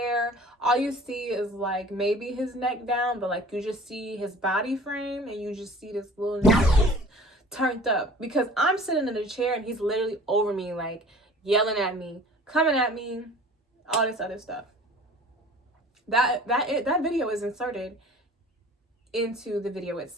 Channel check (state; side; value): normal; both; correlation 0.46